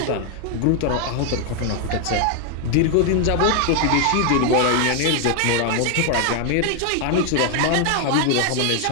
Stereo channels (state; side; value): different; both; correlation 0.00